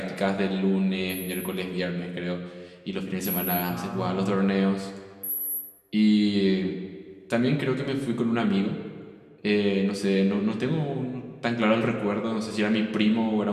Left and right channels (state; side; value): identical; both; correlation 1.00